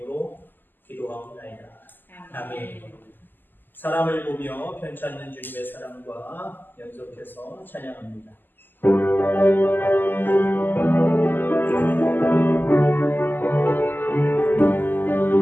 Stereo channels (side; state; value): right; late; 0.090 ms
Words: 기도하옵나이다. 아멘. 사람을 보며 편찮는 주님의 사랑과 연속해서 찬양합니다.